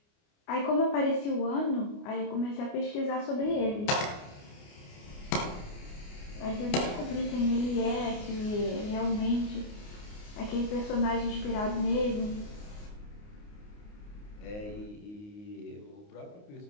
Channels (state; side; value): late; right; 29 ms